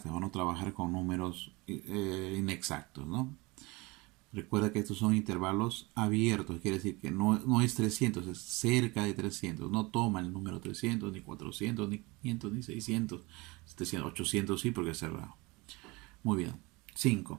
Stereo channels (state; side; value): quieter; left; 24.6 dB